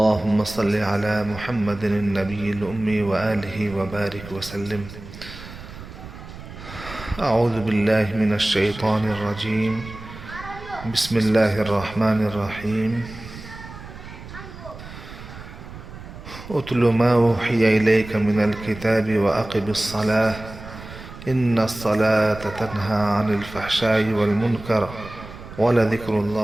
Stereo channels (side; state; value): right; noise; rumble, 14 dB below the sound